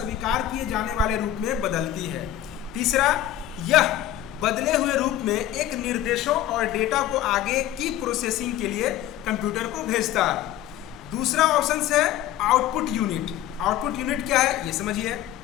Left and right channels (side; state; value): right; quieter; 12.4 dB